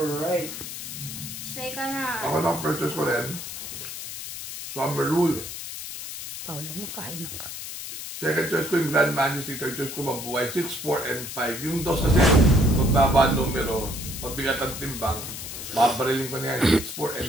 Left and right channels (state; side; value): noise; left; hiss, 8 dB below the sound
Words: So ikaw na. Ako lang first choice ko rin. Summer Rule. Paulo, makain na ka. Second choice ko yung Grand Majesty. Third choice ko Mabuhay. 6, 4, and 5. Yung dos kasi, magbaba numero, mabigat ang timbang, babarilin ko na yan. 6, 4,